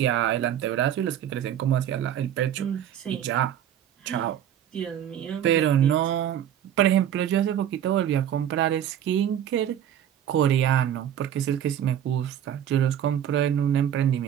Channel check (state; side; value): quieter; left; 10.2 dB